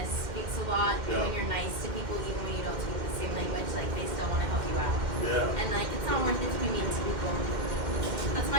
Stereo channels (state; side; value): late; left; 2.1 ms